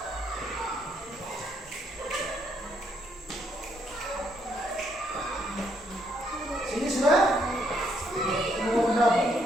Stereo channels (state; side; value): normal; both; correlation 0.72